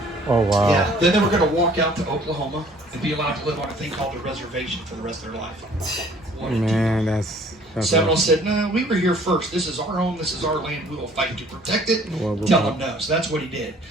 Oh, wow. Yeah, then they were going to walk out to Oklahoma and be allowed to live on a thing called a reservation for the rest of their life. Man, that's Seminole said, no, we were here first. This is our home. This is our land. We will fight to protect it. Tell them no. So that's what he did.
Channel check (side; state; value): both; normal; correlation 0.55